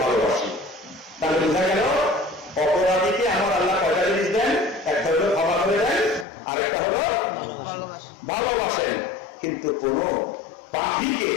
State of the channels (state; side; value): drops out; right; at 6.2 s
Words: ভালোবাসি। তাহলে বোঝা গেল অপরাধীকে আমার আল্লাহ কয়টা জিনিস দেন? একটা হলো ক্ষমা করে দেন, আর একটা হলো ভালোবাসেন। কিন্তু কোন পাপীকে